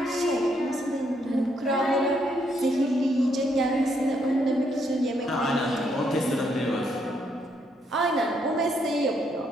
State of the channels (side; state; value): both; normal; correlation 0.74